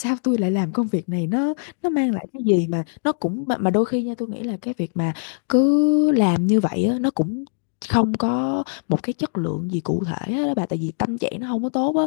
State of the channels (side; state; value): right; silent; digital silence